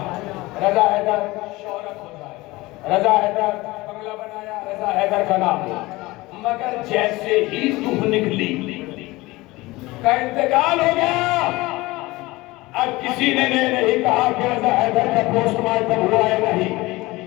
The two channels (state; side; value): quieter; right; 20.8 dB